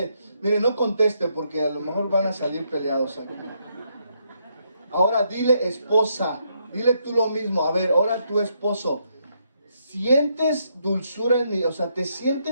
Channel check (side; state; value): both; inverted; correlation -0.76